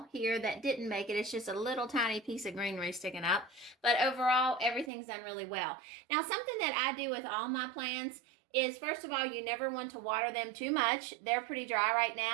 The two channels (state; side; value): drops out; left; at 4.9 s